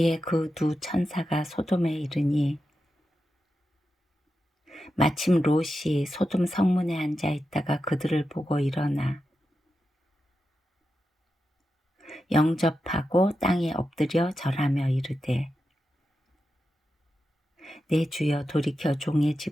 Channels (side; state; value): both; normal; correlation 0.89